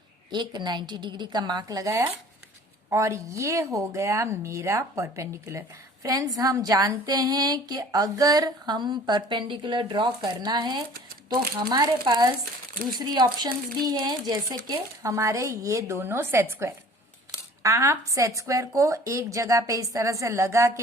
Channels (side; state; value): both; normal; correlation 0.48